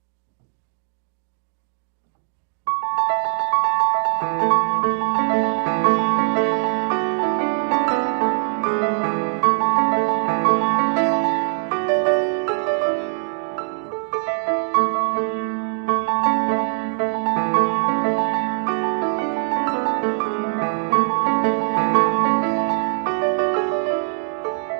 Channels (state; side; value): silent; left; digital silence